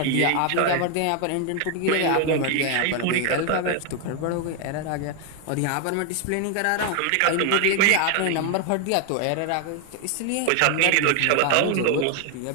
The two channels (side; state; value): both; different; correlation 0.00